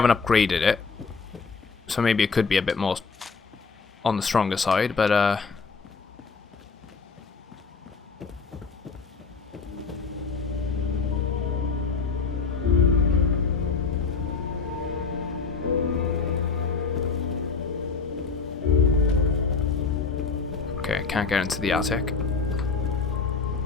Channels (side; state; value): right; quieter; 4.9 dB